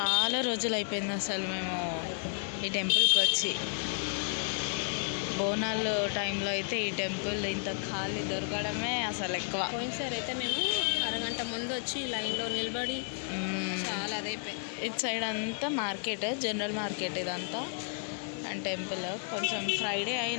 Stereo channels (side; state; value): right; silent; 56 dB below the other